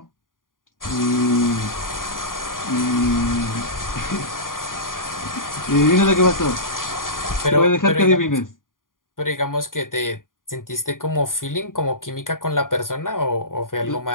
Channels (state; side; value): late; right; 0.90 ms